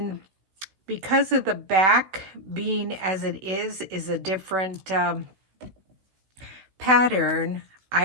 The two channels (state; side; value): late; left; 16 ms